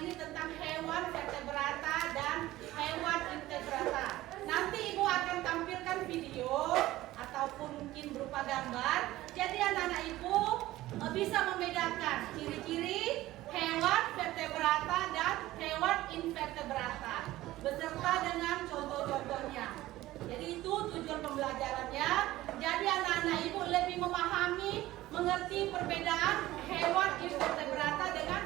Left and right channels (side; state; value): left; quieter; 16.4 dB